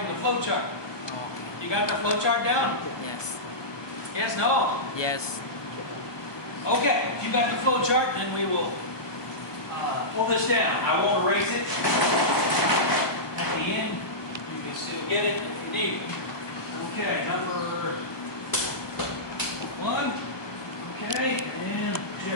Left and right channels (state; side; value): late; right; 1.0 ms